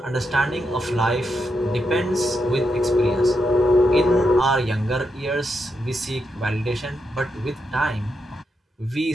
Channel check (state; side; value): normal; both; correlation 0.83